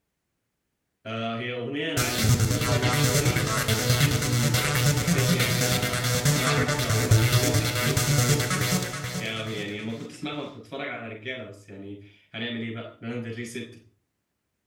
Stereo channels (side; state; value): both; identical; correlation 1.00